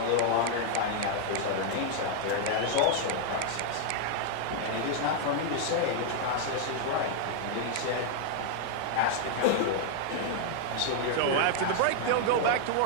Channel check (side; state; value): both; different; correlation 0.00